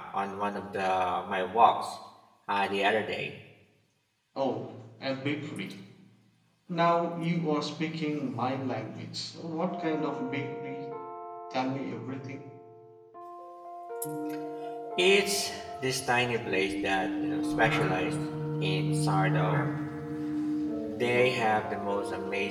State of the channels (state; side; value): identical; both; correlation 1.00